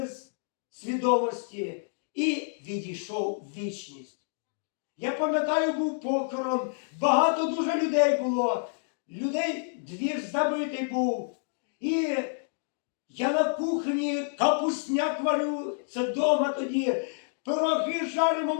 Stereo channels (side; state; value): right; silent; digital silence